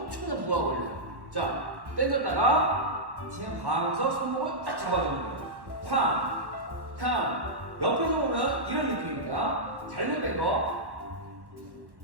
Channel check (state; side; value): late; left; 1.1 ms